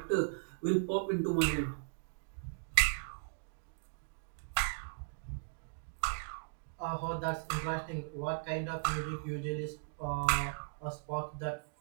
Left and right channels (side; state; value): left; silent; digital silence